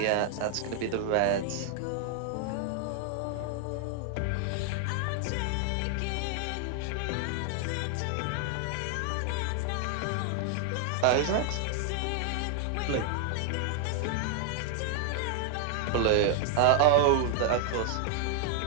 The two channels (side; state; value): both; different; correlation 0.00